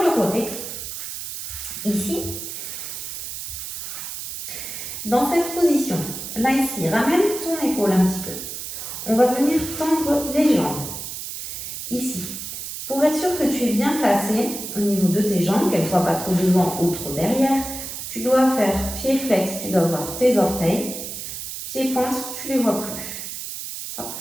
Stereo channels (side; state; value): right; noise; hiss, 7 dB below the sound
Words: le côté, ici, dans cette position. Là, ici, ramène ton épaule un petit peu. On va venir tendre les jambes, ici. Pour être sûr que tu es bien placé au niveau de tes jambes, qu'elles ne soient pas trop devant ou trop derrière, tu dois faire pied flex, tu dois voir tes orteils. Pied pointe, tu ne les vois plus. Hop.